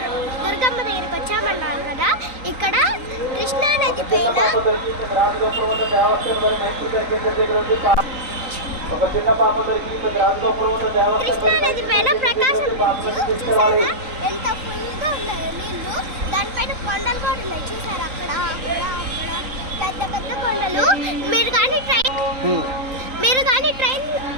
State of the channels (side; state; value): left; late; 3.8 ms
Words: దుర్గమ్మ దగ్గరికి వచ్చామన్నాను కదా. ఇక్కడ కృష్ణా నది పైన ప్రకాశం చూసారా ఎంత ఫుల్గా ఉన్నాయో నీళ్ళు. దానిపైన కొండలు కూడా ఉన్నాయి చూసారా, అక్కడ అక్కడ అక్కడ పెద్ద పెద్ద కొండలు. మీరు కానీ